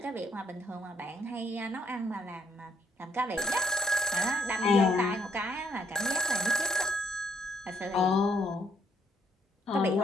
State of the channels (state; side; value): normal; both; correlation 0.71